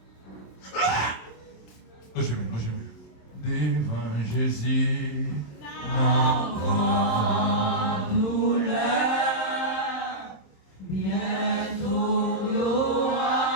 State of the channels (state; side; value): late; right; 27 ms